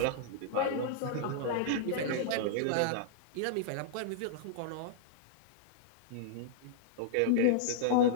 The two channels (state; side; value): different; both; correlation -0.01